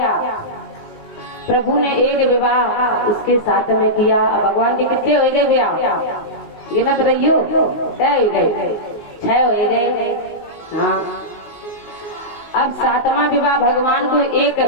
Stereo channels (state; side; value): late; right; 19 ms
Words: प्रभु ने एक विवाह उसके साथ में किया। भगवान के कितने हो गए विवाह, गिनत रहियो, 6 हो गए। हाँ अब 7वां विवाह भगवान को एक